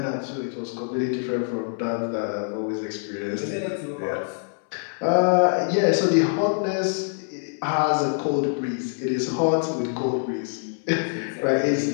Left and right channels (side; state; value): right; silent; 61 dB below the other